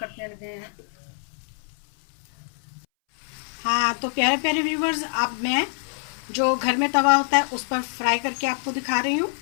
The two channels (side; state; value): right; silent; 61 dB below the other